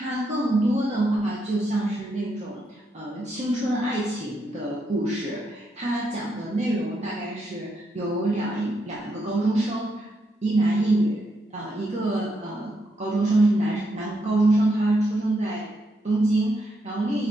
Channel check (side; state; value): both; normal; correlation 0.80